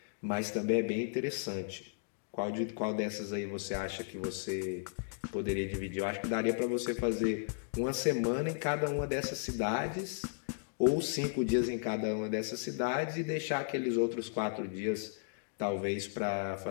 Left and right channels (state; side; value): silent; right; digital silence